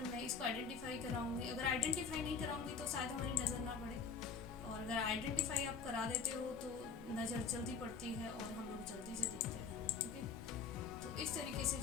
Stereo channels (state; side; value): quieter; right; 5.7 dB